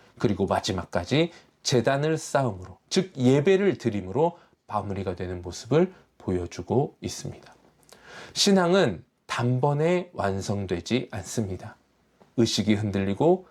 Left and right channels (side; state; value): both; identical; correlation 1.00